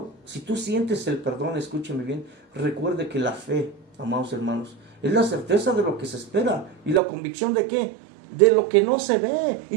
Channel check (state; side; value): drops out; left; at 7.0 s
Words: si tú sientes el perdón, escúcheme bien, recuerde que la fe, amados hermanos, es la certeza de lo que se espera. ¿Y la convicción de qué? De lo que no se ve.